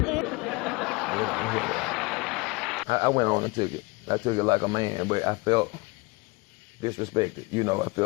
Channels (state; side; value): quieter; right; 25.6 dB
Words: I went on and took it. I took it like a man, but I felt disrespected. I